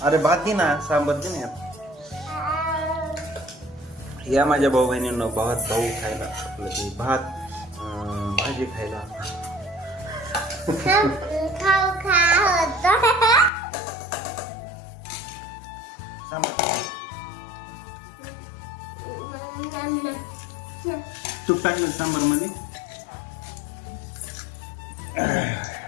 अरे भात दे ना, सांबार दे ना. या माझ्या भाऊ बहिणींना भाऊ खायला, आपलं ते भात भाजी खायला. तूप टाकलं सांबार मध्ये.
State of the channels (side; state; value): right; drops out; at 13.5 s